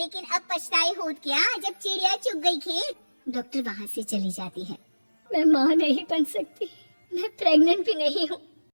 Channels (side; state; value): both; inverted; correlation -1.00